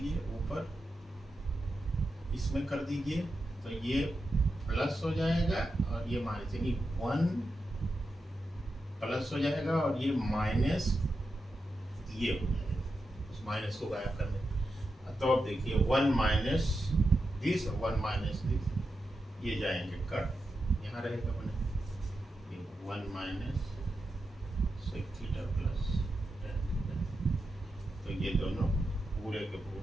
ऊपर, इसमें कर दीजिए, तो ये प्लस हो जाएगा और ये माइनस, यानी 1 प्लस हो जाएगा और ये माइनस ये हो जाएगा, उस माइनस को गायब करने। तो अब देखिए 1 माइनस दिस और 1 माइनस दिस, ये जाएंगे कट, यहाँ रहेगा बने ये 1 minus sec theta plus tan theta, तो ये दोनों पूरे के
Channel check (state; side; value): normal; both; correlation 0.88